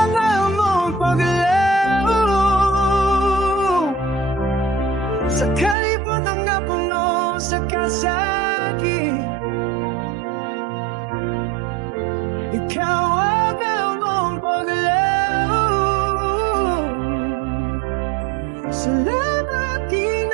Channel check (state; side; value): drops out; left; at 5.8 s